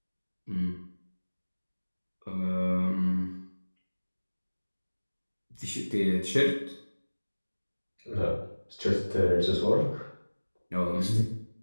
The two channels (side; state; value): both; inverted; correlation -1.00